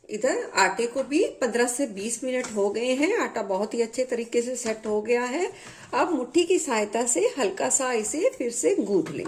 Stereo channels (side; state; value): both; identical; correlation 1.00